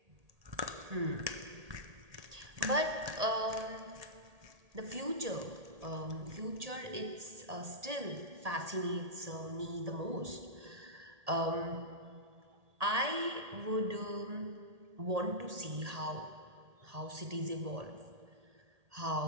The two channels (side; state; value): left; late; 1.8 ms